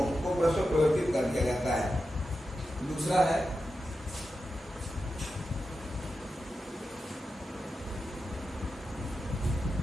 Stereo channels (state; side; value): normal; both; correlation 0.90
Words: को परस्पर परिवर्तित कर दिया जाता है। दूसरा है